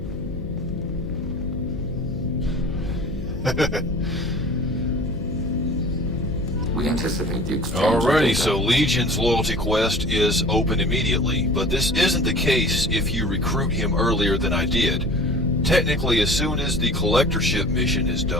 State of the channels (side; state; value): left; noise; hum, 10 dB below the sound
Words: We anticipate the exchange. Alrighty, so Legion's loyalty quest is open immediately, but this isn't the case if you recruit him earlier than I did. Technically, as soon as the collectorship mission is